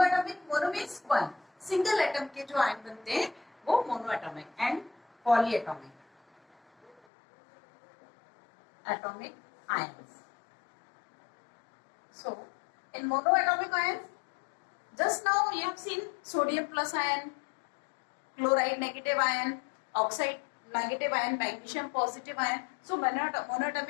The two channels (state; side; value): drops out; right; at 7.0 s